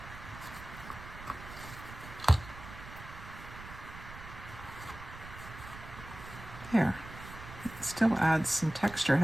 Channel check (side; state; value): right; noise; rumble, 14 dB below the sound